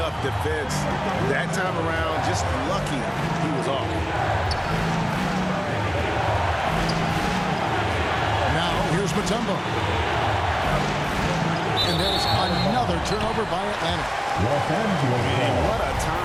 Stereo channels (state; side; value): identical; both; correlation 1.00